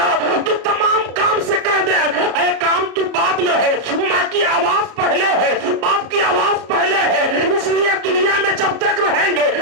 तो तमाम काम से कह दे ऐ काम तू बाद में है, माँ की आवाज पहले है, बाप की आवाज पहले है। इसलिए दुनिया में जब तक रहेंगे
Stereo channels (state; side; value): late; left; 34 ms